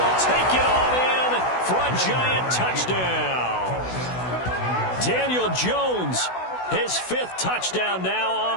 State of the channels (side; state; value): right; late; 16 ms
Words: take it on in for a giant touchdown. Daniel Jones, his 5th touchdown now